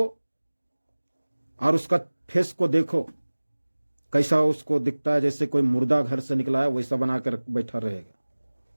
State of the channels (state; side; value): inverted; both; correlation -1.00